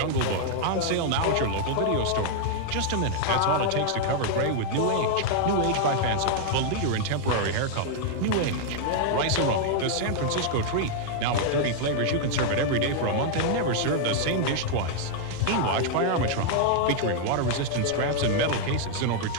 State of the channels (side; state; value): both; different; correlation 0.00